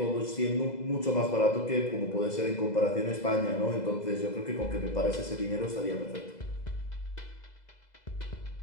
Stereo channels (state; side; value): late; right; 2.0 ms